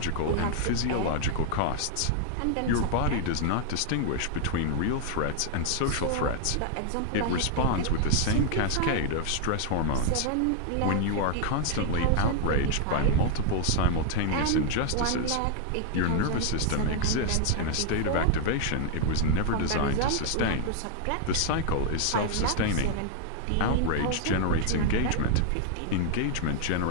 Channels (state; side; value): different; both; correlation 0.00